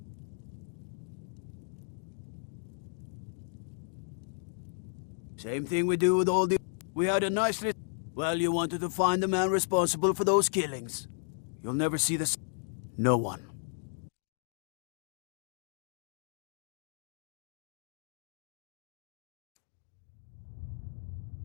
Same thing we do with all the... We had a nice list. Well, you wanted to find the man responsible for those killings. You'll never see this. No one.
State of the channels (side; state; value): right; silent; digital silence